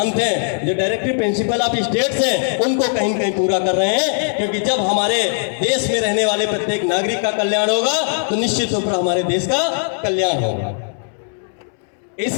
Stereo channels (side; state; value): right; silent; 67 dB below the other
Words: हैं, जो डायरेक्टिव प्रिंसिपल ऑफ स्टेट्स हैं, उनको कहीं न कहीं पूरा कर रहे हैं। क्योंकि जब हमारे देश में रहने वाले प्रत्येक नागरिक का कल्याण होगा तो निश्चित रूप से हमारे देश का कल्याण होगा। इस